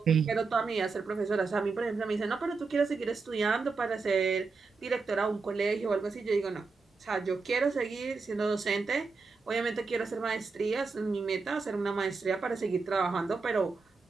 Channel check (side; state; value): left; quieter; 4.4 dB